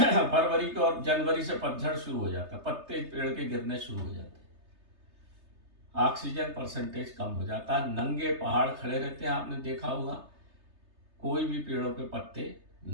को और जनवरी से पतझड़ शुरू हो जाता है, पत्ते पेड़ के गिरने शुरू हो जाते हैं, ऑक्सीजन परसेंटेज कम हो जाता है, नंगे पहाड़ खड़े रहते हैं। आपने देखा होगा, कोई भी पेड़ों पे पत्ते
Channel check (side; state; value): left; late; 3.3 ms